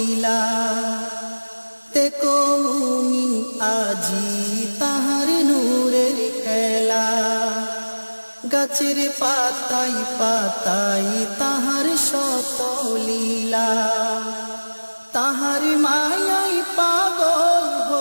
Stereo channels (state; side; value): inverted; both; correlation -1.00